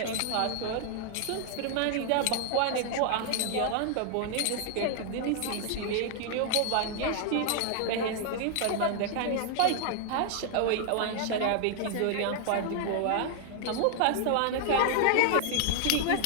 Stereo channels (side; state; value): both; different; correlation 0.00